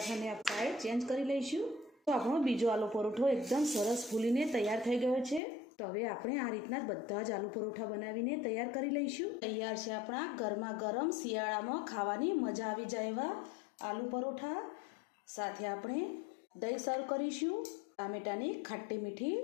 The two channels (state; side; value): drops out; right; at 5.4 s